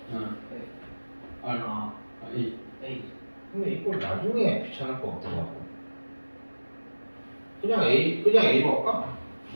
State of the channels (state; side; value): inverted; both; correlation -1.00